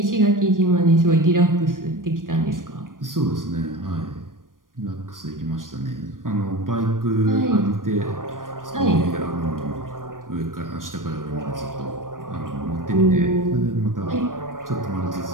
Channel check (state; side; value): late; left; 0.90 ms